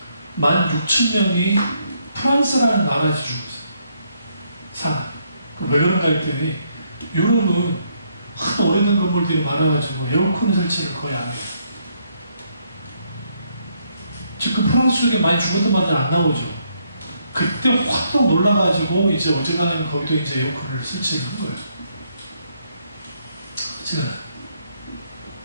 프랑스라는 나라에서 죽었어요. 왜 그런가 했더니 유럽은 하도 오래된 건물들이 많아가지고 에어컨 설치를 거의 안 해요. 지금 프랑스 쪽에 많이 죽었던 말들 안 나오죠. 그때 확 놀라가지고 이제 어지간하면 거기도 이제 에어컨을 설치를 한 거예요.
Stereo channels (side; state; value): both; inverted; correlation -0.73